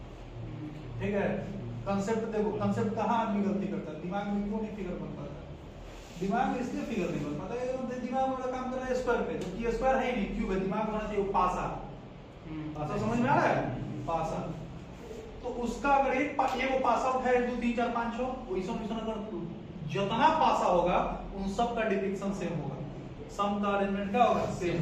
ठीक है। कांसेप्ट देखो, कांसेप्ट कहाँ आदमी गलती करता है, दिमाग में क्यों नहीं फिगर बन पाता? दिमाग में इसलिए फिगर नहीं बन पाता है, दिमाग वाला काम कर रहा है स्क्वायर पे, जबकि स्क्वायर है ही नहीं, क्यूब है। दिमाग होना चाहिए पासा। पासा समझ में आ रहा है? पासा। तो उसका अगर एक वो पासा उठाए 1 2 3 4 5 6 वैसा अगर जितना पासा होगा उन सब का डिपिक्शन सेम होगा, सम का अरेंजमेंट क्या होगा? सेम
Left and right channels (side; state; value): both; identical; correlation 1.00